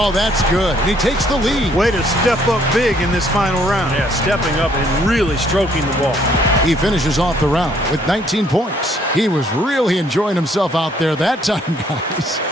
that's good. And he takes the lead. Way to step up big in this final round. Yeah, stepping up and really stroking the ball. He finishes off the round with 19 points. He was really enjoying himself out there that time, guys.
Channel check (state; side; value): normal; both; correlation 0.65